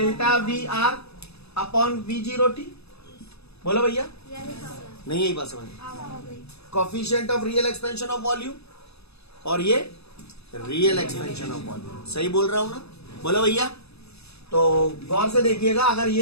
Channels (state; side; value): late; right; 0.79 ms